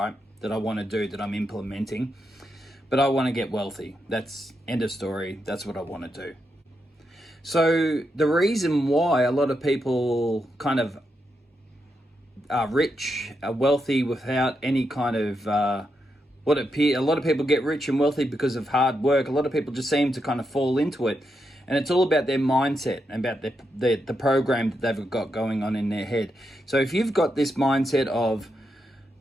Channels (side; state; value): both; normal; correlation 0.84